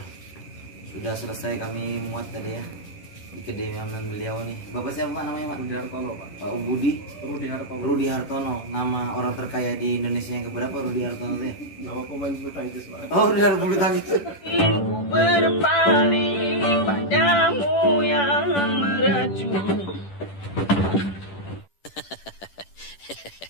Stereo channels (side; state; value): right; late; 10 ms